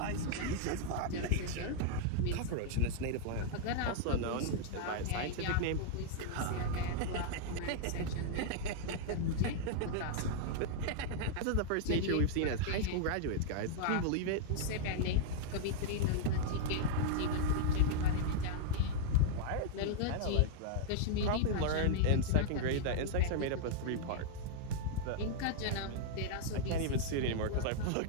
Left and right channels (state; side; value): different; both; correlation -0.01